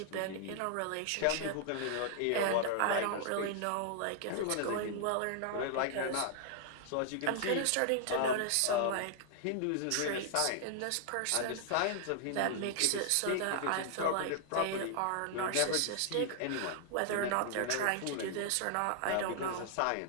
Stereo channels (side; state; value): both; different; correlation -0.01